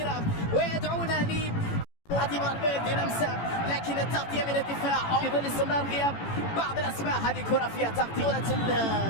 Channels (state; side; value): late; right; 18 ms